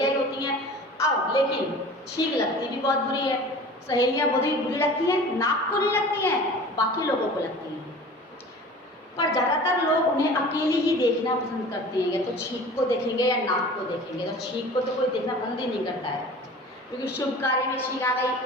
ही होती हैं। अब लेकिन छींक लगती भी बहुत बुरी है। सहेलियां बहुत ही बुरी लगती हैं, नाक को नहीं लगती हैं, बाकी लोगों को लगती हैं। पर ज़्यादातर लोग उन्हें अकेली ही देखना पसंद करते हैं, या तो छींक को देखेंगे या नाक को देखेंगे। तो छींक को तो कोई देखना पसंद ही नहीं करता है, क्योंकि शुभ कार्य में छींक आ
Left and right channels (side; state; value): both; normal; correlation 0.41